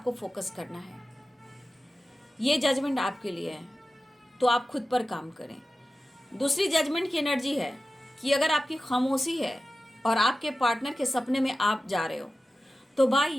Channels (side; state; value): both; normal; correlation 0.94